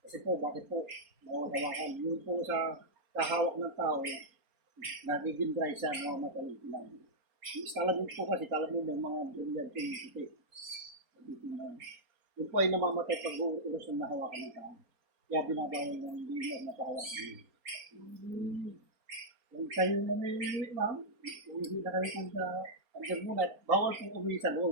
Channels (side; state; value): left; late; 4.3 ms